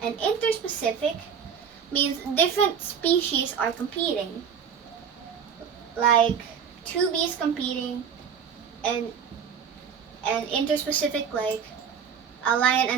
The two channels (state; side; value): quieter; left; 7.3 dB